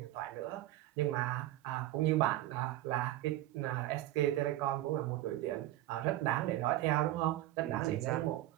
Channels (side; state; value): left; quieter; 15.0 dB